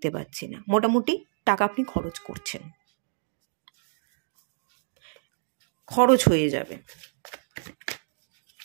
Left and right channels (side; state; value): left; silent; digital silence